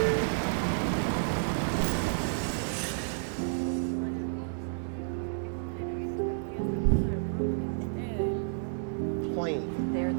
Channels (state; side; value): silent; left; digital silence